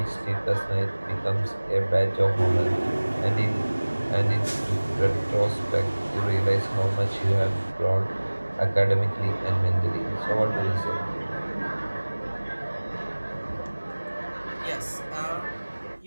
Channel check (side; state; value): both; inverted; correlation -1.00